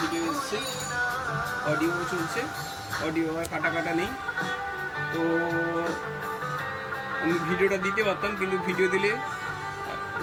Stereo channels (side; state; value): both; identical; correlation 1.00